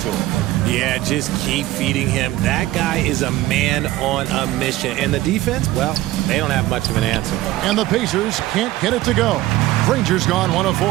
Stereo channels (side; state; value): left; quieter; 16.4 dB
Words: to him? Yeah, just keep feeding him. That guy is a man on a mission. And the defense, well, they don't have much of an answer. And the Pacers can't get it to go. Granger's gone 1 of